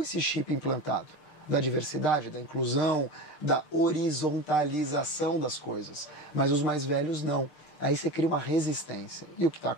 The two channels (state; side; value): late; right; 6.6 ms